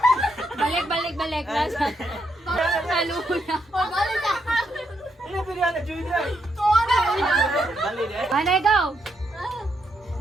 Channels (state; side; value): normal; both; correlation 0.79